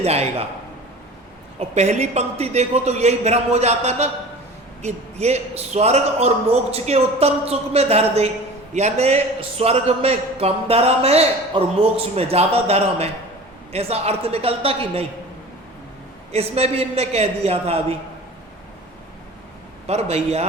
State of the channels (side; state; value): both; normal; correlation 0.39